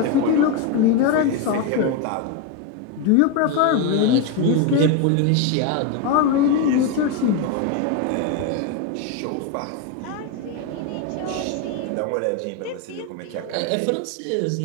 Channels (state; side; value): different; both; correlation 0.02